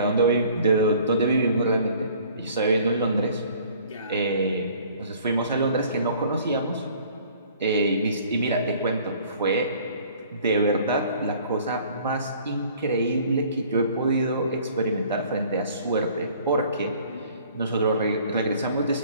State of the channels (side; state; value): both; inverted; correlation -0.54